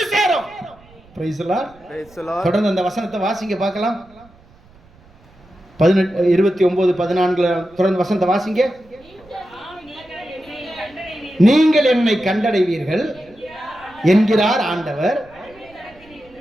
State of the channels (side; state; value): right; noise; rumble, 27 dB below the sound